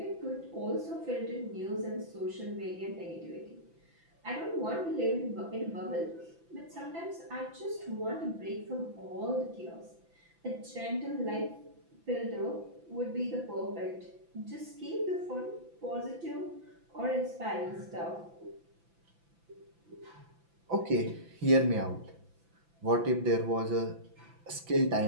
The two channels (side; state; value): left; late; 5.9 ms